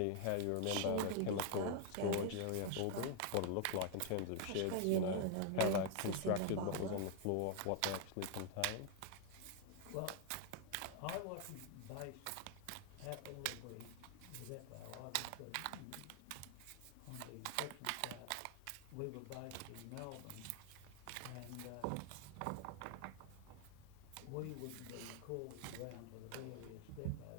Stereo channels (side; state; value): both; different; correlation 0.00